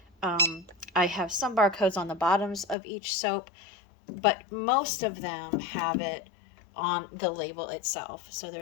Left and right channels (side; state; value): right; drops out; at 2.8 s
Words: I have some barcodes on the bottoms of each soap, but most of them have it on the label itself. So